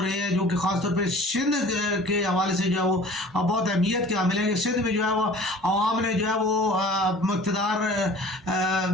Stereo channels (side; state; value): both; normal; correlation 0.46